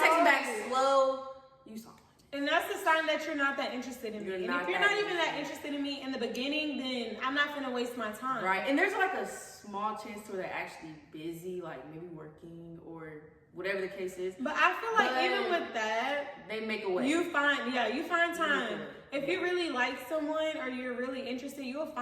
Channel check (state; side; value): identical; both; correlation 1.00